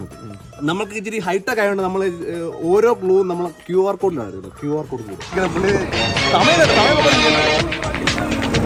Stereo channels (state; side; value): identical; both; correlation 1.00